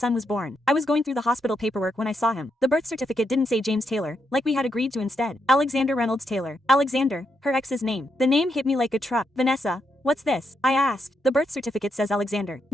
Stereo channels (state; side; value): normal; both; correlation 0.81